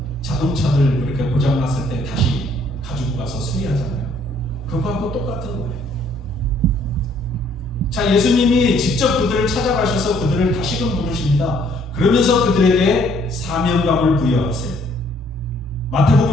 자동차들 이렇게 고장났을 때 다시 가지고 가서 수리하잖아요. 그거하고 똑같은 거예요. 자, 예수님이 직접 그들을 찾아가셔서 그들을 다시금 부르십니다. 그러면서 그들에게 사명감을 부여하세요.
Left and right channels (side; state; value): both; normal; correlation 0.63